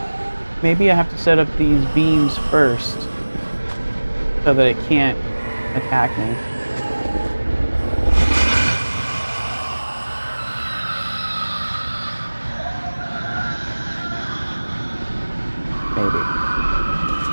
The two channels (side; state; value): both; inverted; correlation -1.00